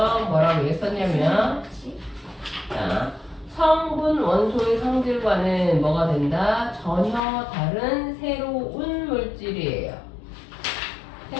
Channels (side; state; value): right; drops out; at 7.2 s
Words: 뭐라고 했었냐면, 자, 성분 원소의 성질과는 뭐가 된다? 전혀 다른 새로운 물질이에요.